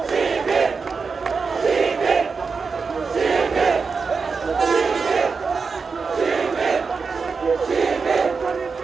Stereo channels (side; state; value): left; quieter; 5.0 dB